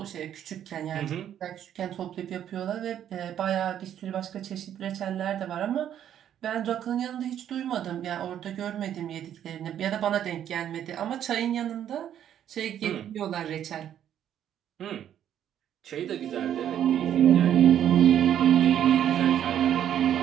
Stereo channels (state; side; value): quieter; left; 10.2 dB